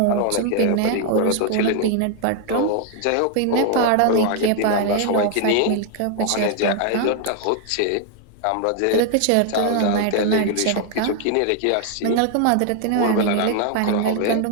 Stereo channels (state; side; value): different; both; correlation 0.00